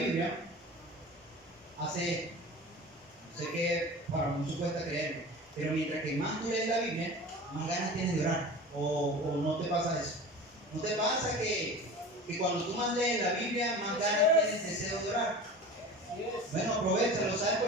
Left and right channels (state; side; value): normal; both; correlation 0.35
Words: hace, sé que para muchos cuesta creerlo, pero mientras que más tú lees la Biblia, más ganas tienes de orar. O no te pasa eso. ¿No te pasa que cuando tú más lees la Biblia, más ganas tienes deseo de orar? Bueno, aprovechalo, ¿sabes?